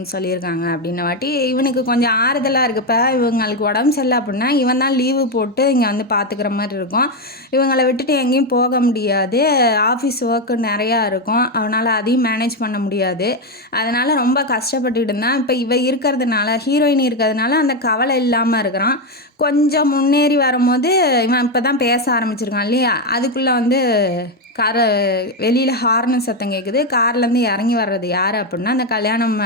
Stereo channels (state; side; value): normal; both; correlation 0.08